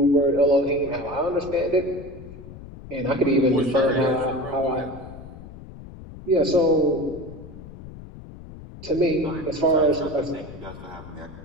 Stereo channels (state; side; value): noise; left; rumble, 15 dB below the sound